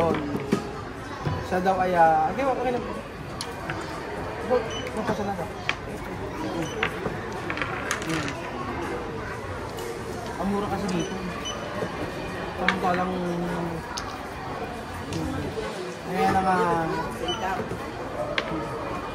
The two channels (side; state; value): both; identical; correlation 1.00